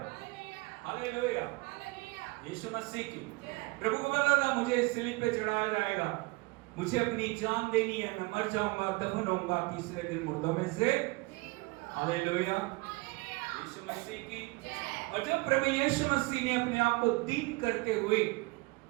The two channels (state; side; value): quieter; left; 24.9 dB